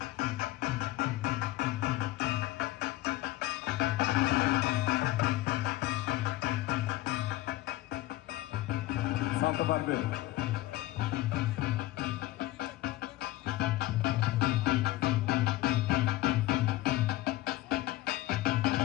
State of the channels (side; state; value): right; quieter; 16.8 dB